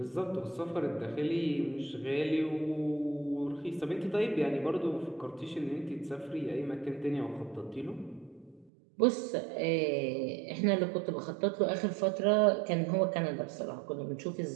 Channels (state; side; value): drops out; left; at 8.7 s